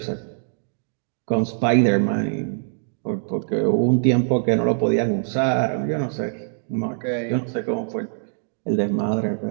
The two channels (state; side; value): silent; left; digital silence